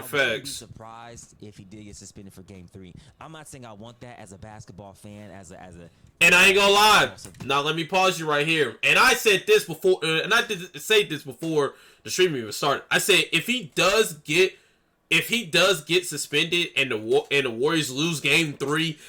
wouldn't be surprised if he did get suspended for Game 3. I'm not saying I want that as a basketball fan, as a. And I ain't gonna lie. Now let me pause you right here. And I said this before, and I did say this before the stream even started. I said if he does get suspended and the Warriors lose Game 3,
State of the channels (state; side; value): identical; both; correlation 1.00